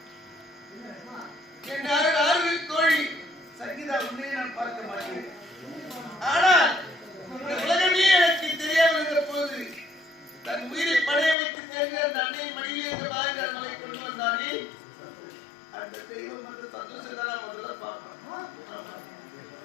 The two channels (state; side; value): drops out; right; at 11.4 s